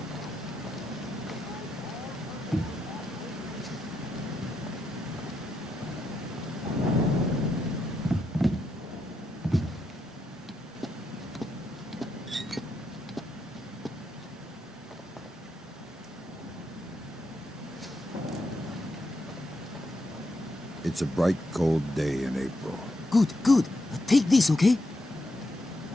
It's a bright, cold day in April. Good, good. Take this, okay?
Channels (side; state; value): both; normal; correlation 0.82